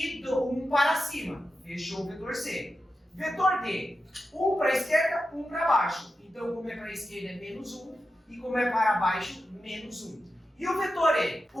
1 para cima. Fechou o vetor C. Vetor D, 1 para a esquerda, 1 para baixo. Então, como é para a esquerda é menos 1 e como é para baixo, menos 1. E o vetor E,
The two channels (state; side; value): normal; both; correlation 0.90